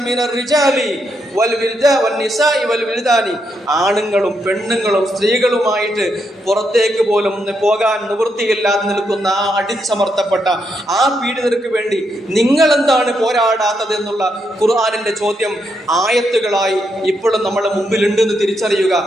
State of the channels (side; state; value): both; normal; correlation 0.80